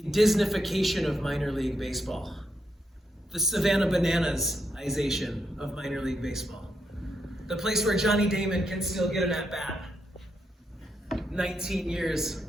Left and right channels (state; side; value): normal; both; correlation 0.81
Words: Disneyfication of minor league baseball, the Savannah Bananas-ization of minor league baseball, the place where Johnny Damon can still get an at-bat 19 years